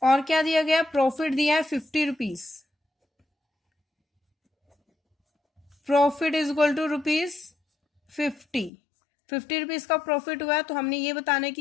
और क्या दिया गया प्रॉफिट दिया है 50 rupees, profit is equal to rupees 50 rupees का प्रॉफिट हुआ है। तो हमने ये बताना है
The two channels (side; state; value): right; drops out; at 8.7 s